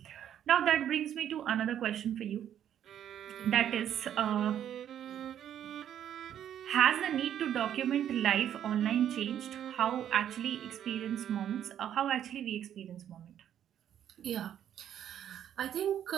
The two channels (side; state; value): left; quieter; 10.2 dB